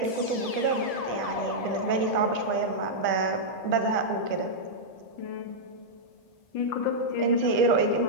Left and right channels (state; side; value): late; right; 1.7 ms